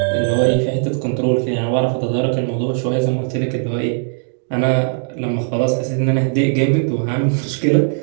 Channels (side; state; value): left; silent; 67 dB below the other